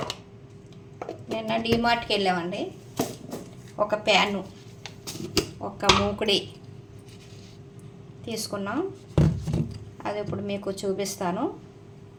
నిన్న డీమార్ట్కి వెళ్ళామండి. ఒక ప్యాను, ఒక మూకుడి తీసుకున్నాం. అది ఇప్పుడు మీకు చూపిస్తాను.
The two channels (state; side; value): identical; both; correlation 1.00